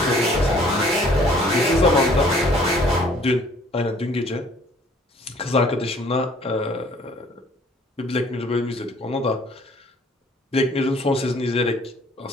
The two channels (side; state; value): both; normal; correlation 0.57